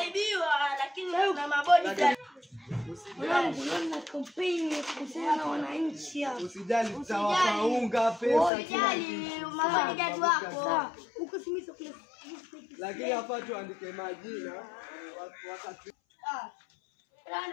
lakini na mabodi Mwanangu na kampeni kuhusiana na wananchi hapa. Usijali tutawaunga pesa. Usijali mabodi wako. Huko simisa kule. Lakini hapa tuandike majina wakati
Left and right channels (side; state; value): right; drops out; at 8.5 s